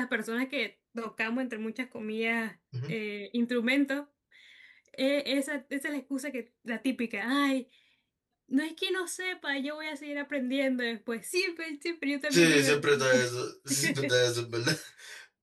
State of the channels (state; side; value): identical; both; correlation 1.00